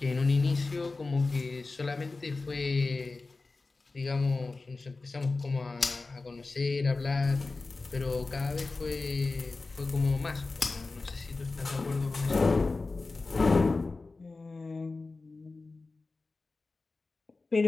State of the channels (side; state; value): right; quieter; 3.7 dB